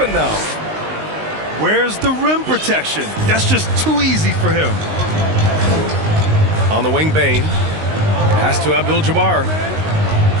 now. Where's the rim protection? That's just too easy for him. On the wing, Bain. Pass to Abdul-Jabbar.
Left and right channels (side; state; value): left; late; 19 ms